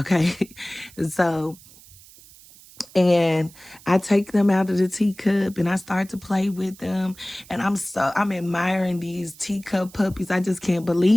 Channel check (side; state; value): right; noise; hiss, 23 dB below the sound